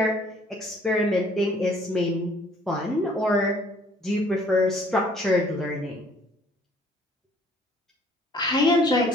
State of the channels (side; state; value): both; normal; correlation 0.58